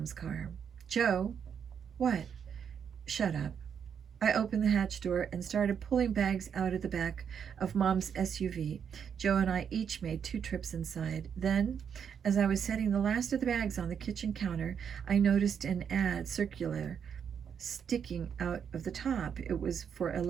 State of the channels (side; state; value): left; quieter; 7.6 dB